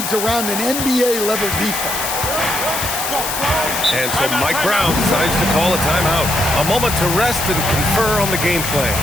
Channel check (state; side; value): noise; left; hiss, 4 dB below the sound